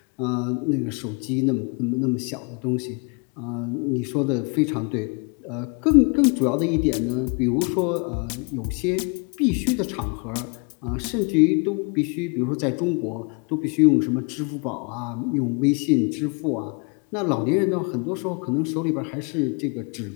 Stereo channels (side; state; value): right; quieter; 34.1 dB